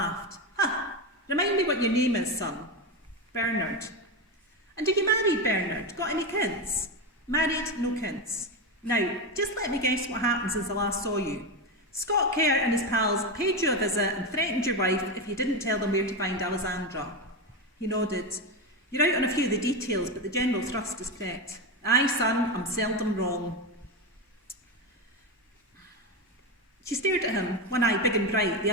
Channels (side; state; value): both; normal; correlation 0.14